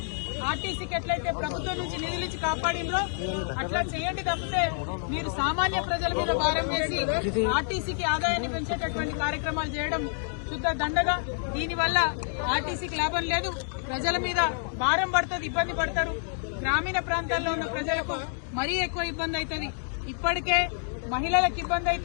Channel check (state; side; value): silent; right; digital silence